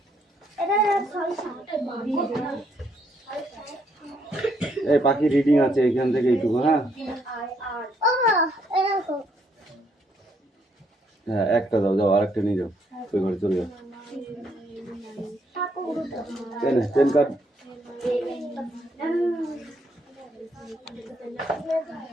এই পাখি রিডিং আছে এখান থেকে এইটুকু হ্যাঁ হ্যাঁ একটা দাও যাও আরেকটা নিয়ে যাও ওই ঘরে চলে যাও এনে পেন কার্ড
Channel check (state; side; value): normal; both; correlation 0.72